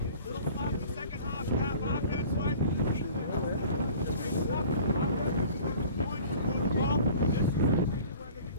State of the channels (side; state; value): both; inverted; correlation -0.46